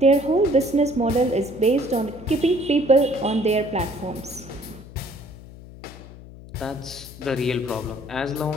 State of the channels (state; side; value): noise; left; hum, 17 dB below the sound